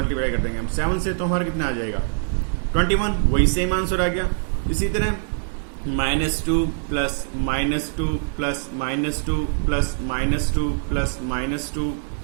कर देंगे हम, 7 से, तो हमारा कितना आ जाएगा 21। वही सेम आंसर आ गया। इसी तरह -2 + -2 + -2 + -2 + -2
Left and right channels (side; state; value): left; silent; digital silence